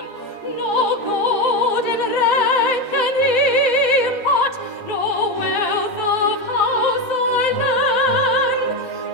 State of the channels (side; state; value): both; normal; correlation 0.14